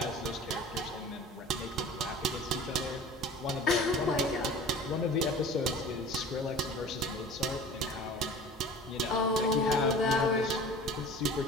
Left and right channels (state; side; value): normal; both; correlation 0.41